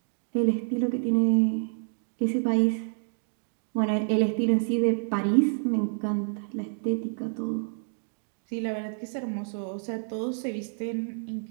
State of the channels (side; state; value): left; silent; digital silence